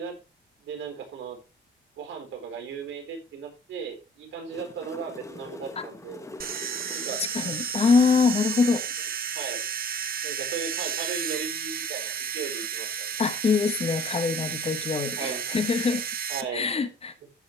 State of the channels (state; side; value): normal; both; correlation 0.51